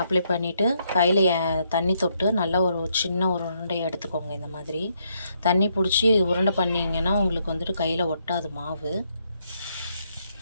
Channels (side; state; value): both; inverted; correlation -0.75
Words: பண்ணிவிட்டு கையில் தண்ணி தொட்டு நல்லா ஒரு சின்ன ஒரு உருண்டையை எடுத்துக்கோங்க. இந்த மாதிரி தண்ணி பிடிச்சி உருண்டை பண்ணிங்கன்னா உங்களுக்கு வந்துட்டு கையில் ஒட்டாது மாவு.